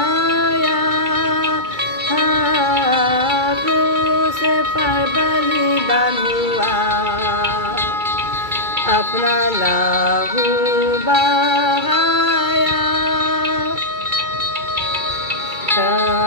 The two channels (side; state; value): left; late; 2.3 ms